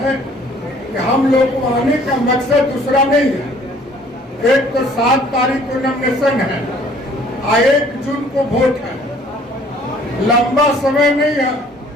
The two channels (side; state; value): both; normal; correlation 0.56